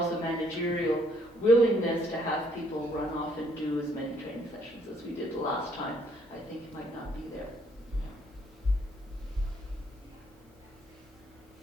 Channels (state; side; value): normal; both; correlation 0.67